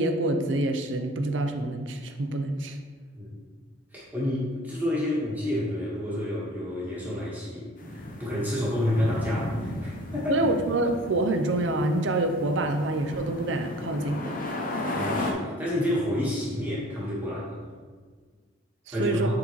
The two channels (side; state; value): both; normal; correlation 0.48